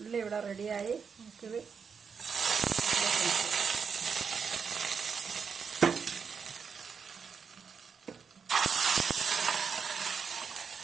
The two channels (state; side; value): quieter; left; 6.1 dB